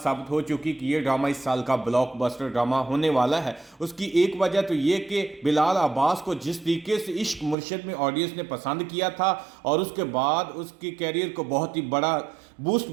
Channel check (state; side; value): drops out; left; at 7.6 s